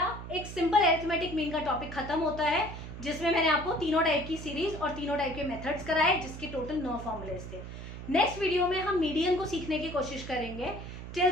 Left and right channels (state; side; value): noise; right; hum, 10 dB below the sound